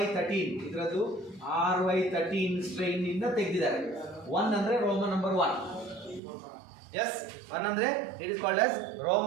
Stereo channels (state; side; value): drops out; left; at 6.2 s